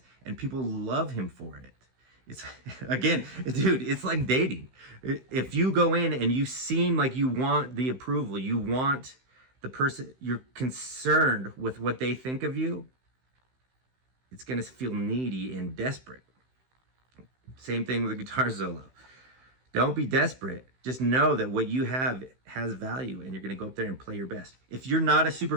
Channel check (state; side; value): late; left; 16 ms